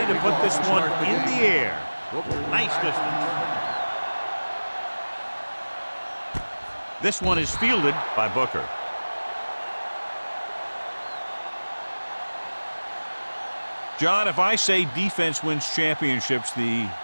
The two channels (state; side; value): inverted; both; correlation -1.00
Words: to put this one in the air. Nice distance. This one is fielded by Booker. John, if I say defense wins championships, the